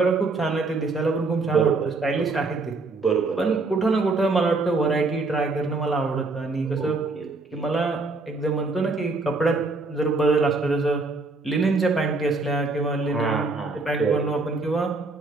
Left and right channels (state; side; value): quieter; left; 3.6 dB